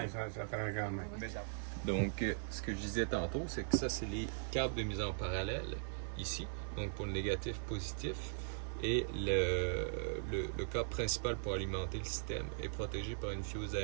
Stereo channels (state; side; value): silent; left; 51 dB below the other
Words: Ça prend quand même. Donc, ce que je disais tantôt, c'est que ça, c'est les câbles de mise en parallèle ici. Donc, pour le négatif, positif. Et le câble principal pour alimenter le système est protégé par une fuse